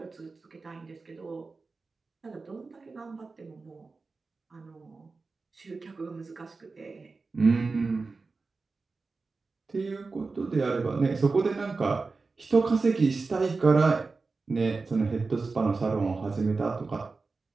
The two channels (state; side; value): quieter; left; 4.0 dB